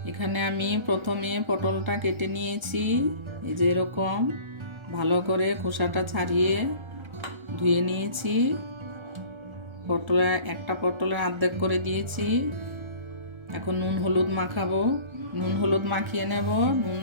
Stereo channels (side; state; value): left; late; 1.3 ms